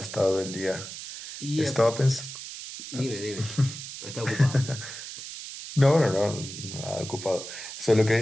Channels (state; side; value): noise; right; hiss, 10 dB below the sound